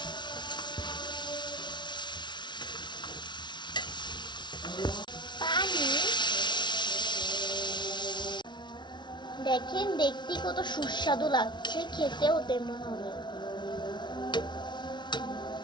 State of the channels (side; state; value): right; late; 0.22 ms